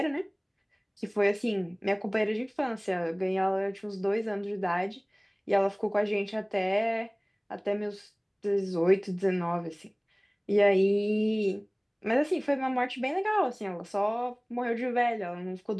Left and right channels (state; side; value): identical; both; correlation 1.00